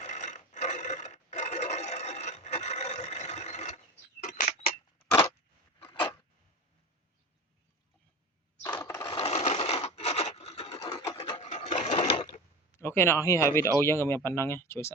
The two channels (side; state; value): both; normal; correlation 0.30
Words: អូខេអ្នកនរគ្នាហើយវីដេអូយើងក៏មានប៉ុណ្ណឹងជួយ